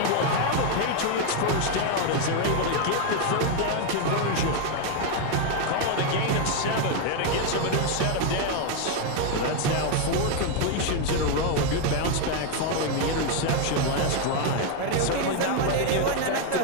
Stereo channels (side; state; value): both; different; correlation 0.01